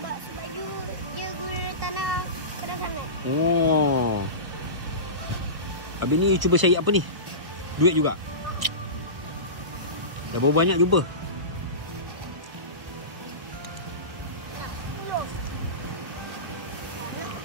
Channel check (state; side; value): late; left; 1.2 ms